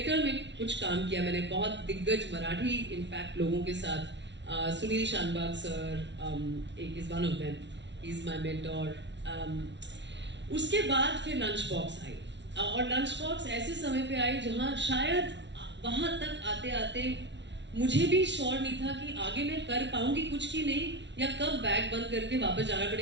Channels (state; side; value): late; left; 0.51 ms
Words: में कुछ काम किया मैंने, बहुत दिग्गज मराठी इनफैक्ट लोगों के साथ। सुनील शानबाग सर एक is one of them, he is my mentor. उसके बाद फिर लंच बॉक्स आई, और लंच बॉक्स ऐसे समय पे आई जहाँ शायद वहां तक आते आते मुझे भी श्योर नहीं था कि आगे मैं कर पाऊंगी कुछ की नहीं, या कब बैग बंद करके वापस जाना